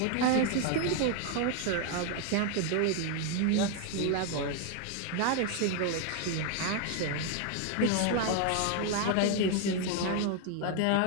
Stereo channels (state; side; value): different; both; correlation 0.01